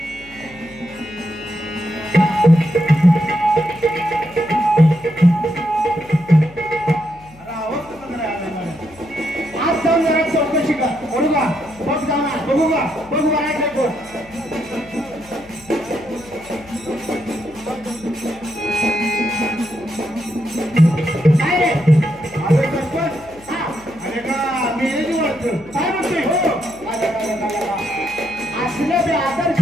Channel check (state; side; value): noise; left; hum, 23 dB below the sound